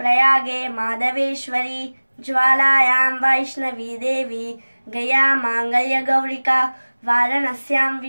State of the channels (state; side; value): inverted; both; correlation -1.00